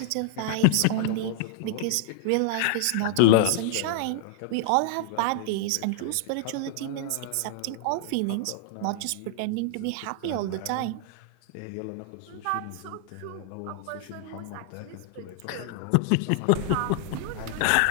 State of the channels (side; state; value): both; different; correlation -0.01